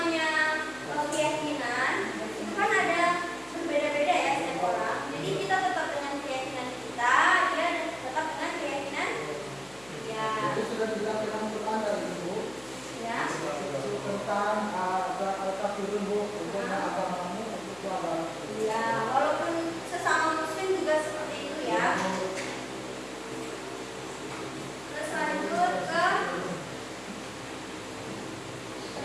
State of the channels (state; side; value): noise; left; hum, 24 dB below the sound